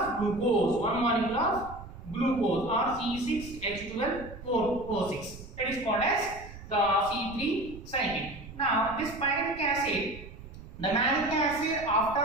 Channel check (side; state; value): right; noise; rumble, 15 dB below the sound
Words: glucose. One molecule of glucose or C6H12O6. That is called as the C3 cycle. Now, this pyruvic acid, the malic acid after